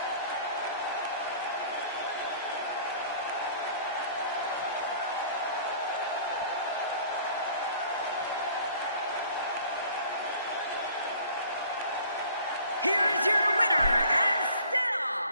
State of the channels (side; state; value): both; inverted; correlation -0.52